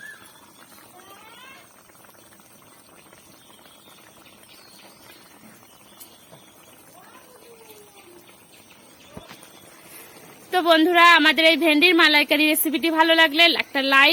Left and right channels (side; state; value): both; identical; correlation 1.00